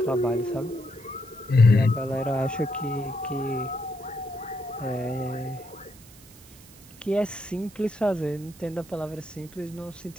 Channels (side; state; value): right; noise; hiss, 22 dB below the sound